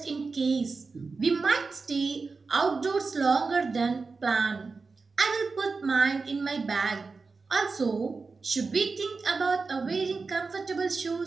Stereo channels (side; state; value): left; quieter; 4.3 dB